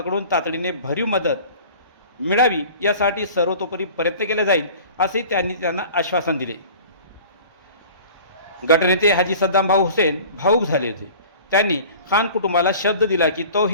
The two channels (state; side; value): inverted; both; correlation -0.43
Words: तातडीने भरीव मदत मिळावी यासाठी सर्वतोपरी प्रयत्न केले जाईल असे त्यांना आश्वासन दिले। गटनेते हाजी सद्दाम भाऊ हुसेन भाऊक झाले होते। त्यांनी खान कुटुंबाला शब्द दिला की